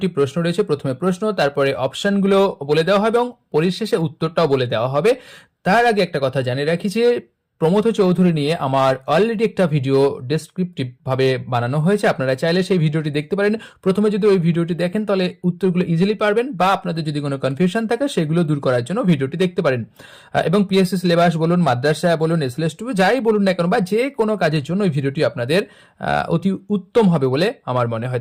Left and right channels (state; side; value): identical; both; correlation 1.00